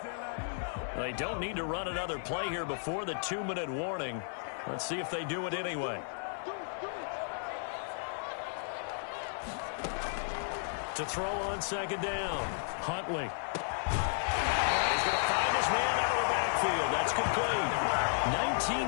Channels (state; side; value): silent; right; 55 dB below the other